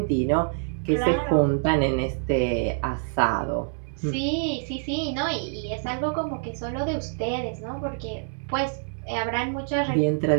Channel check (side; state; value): left; silent; 61 dB below the other